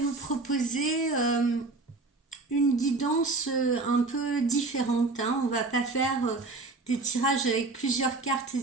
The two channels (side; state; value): left; quieter; 3.6 dB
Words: proposer une guidance un peu différente. On va pas faire des tirages avec plusieurs cartes,